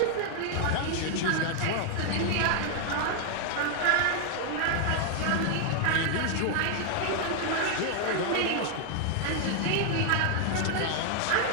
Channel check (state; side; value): different; both; correlation 0.00